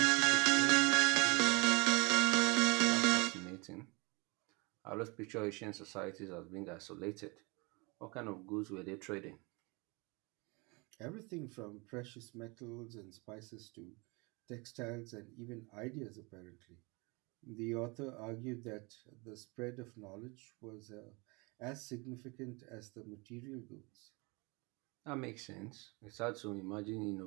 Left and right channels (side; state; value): left; quieter; 28.2 dB